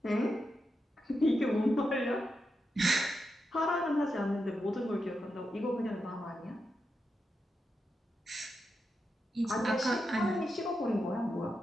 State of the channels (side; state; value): both; normal; correlation 0.87